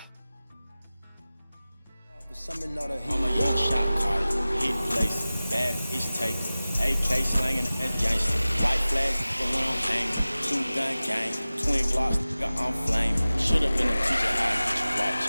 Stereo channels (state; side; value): inverted; both; correlation -0.97